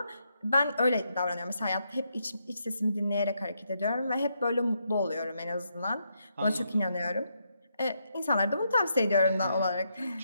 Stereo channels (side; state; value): both; inverted; correlation -0.79